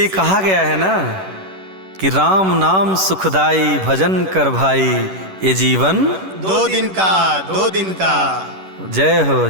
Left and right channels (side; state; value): left; late; 11 ms